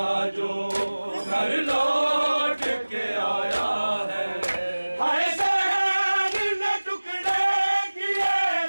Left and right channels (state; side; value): inverted; both; correlation -1.00